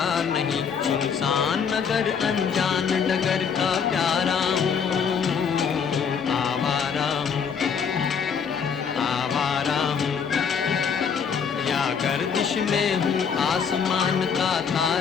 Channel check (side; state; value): right; quieter; 6.6 dB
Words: नहीं। सुनसान नगर अनजान डगर का प्यारा हूँ, आवारा हूँ, आवारा हूँ। या गर्दिश में हूँ आसमान का